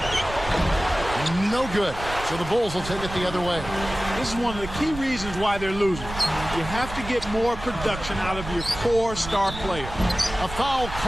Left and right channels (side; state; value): right; noise; rumble, 10 dB below the sound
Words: No good. So the Bulls will take it the other way. This is one of the key reasons why they're losing. You have to get more production out of your core star player. A foul